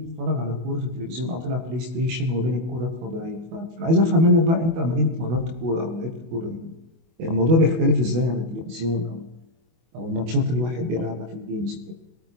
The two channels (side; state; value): left; late; 24 ms